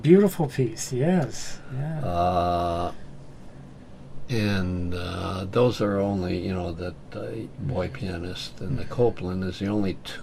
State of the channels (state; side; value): identical; both; correlation 1.00